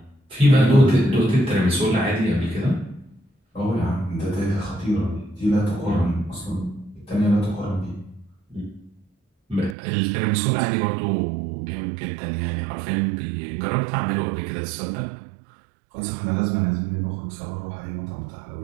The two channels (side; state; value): left; drops out; at 9.8 s